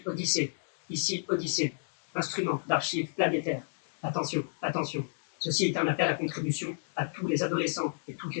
Odyssée, ici Odyssée, instrument d'archives planétaires. Attention, attention, ceci est un appel à contribution à tous les adolescents et toutes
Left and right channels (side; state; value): right; silent; digital silence